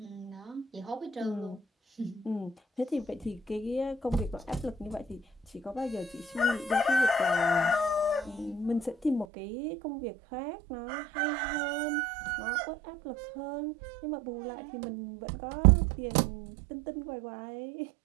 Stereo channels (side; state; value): left; drops out; at 9.2 s